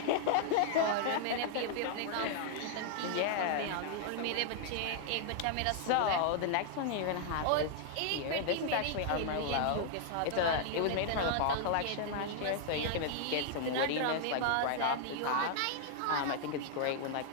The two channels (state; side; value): different; both; correlation -0.01